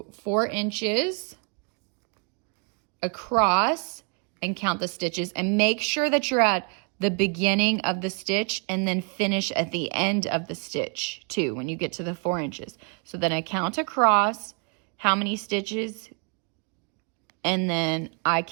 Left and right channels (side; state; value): left; quieter; 38.9 dB